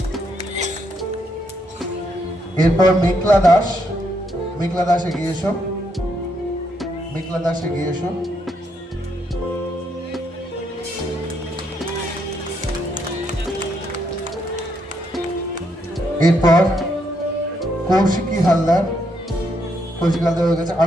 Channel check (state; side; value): normal; both; correlation 0.76